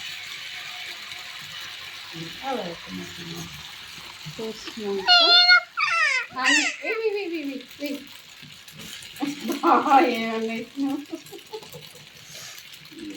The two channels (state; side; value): identical; both; correlation 1.00